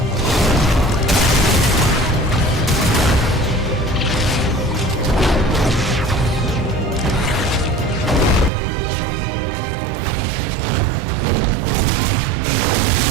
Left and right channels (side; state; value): left; drops out; at 8.5 s